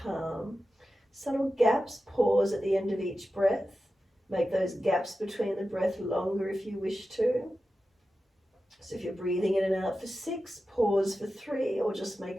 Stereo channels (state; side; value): normal; both; correlation 0.93